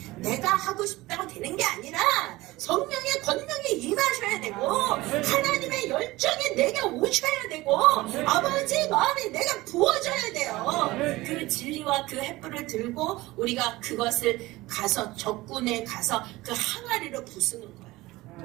내가 하고 싶다고 되는 게 아니라 성령의 권능이 임하셔야 되고 하나님의 열정이 내게 오셔야 되고 아버지의 마음이 내가 부어져야 돼요. 그 진리와 그 횃불을 들고 우리가 그것을 가서 적군에 가서 그 항아리를 부수는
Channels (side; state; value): left; quieter; 19.4 dB